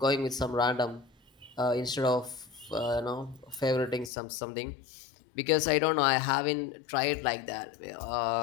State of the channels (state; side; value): drops out; right; at 4.1 s